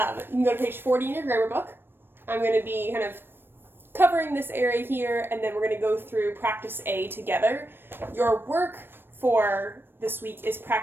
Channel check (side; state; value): left; late; 0.099 ms